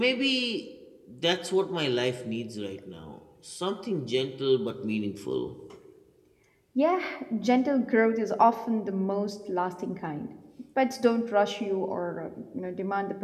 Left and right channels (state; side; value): identical; both; correlation 1.00